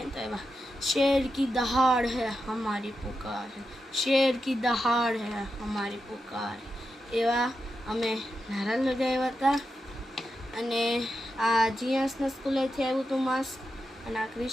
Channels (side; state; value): both; normal; correlation 0.88